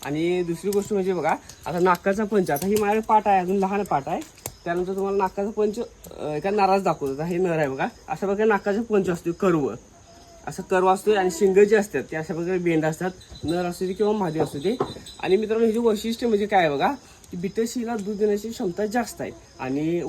आणि दुसरी गोष्ट म्हणजे बघा, आता नाकाचा पंच, आता ही माझ्याकडे पाट आहे, अजून लहान पाट आहे. त्यानंतर तुम्हाला नाकाचा पंच एका नाराज दाखवतो. हे नर आहे बघा, अशा प्रकारे नाकाचा पंच असतो, कर्व असं कर्व असतो. आणि शिंग जे असतात ते अशा प्रकारे बेंड असतात, नर असू दे किंवा मादी असू दे. आणि मित्रांनो, हे वैशिष्ट्य म्हणजे काय बघा, की बिटल शेळीला दूध देण्याची क्षमता जास्त आहे आणि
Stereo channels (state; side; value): identical; both; correlation 1.00